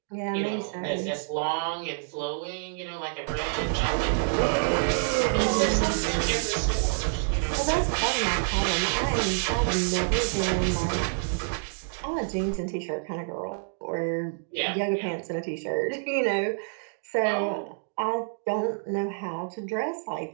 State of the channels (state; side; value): silent; left; digital silence